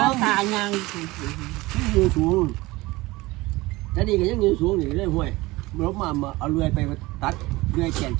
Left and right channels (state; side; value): quieter; left; 20.6 dB